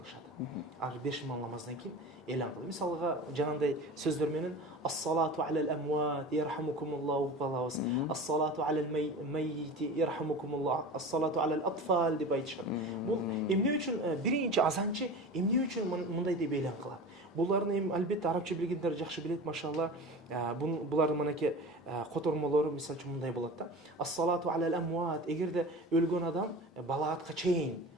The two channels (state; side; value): normal; both; correlation 0.34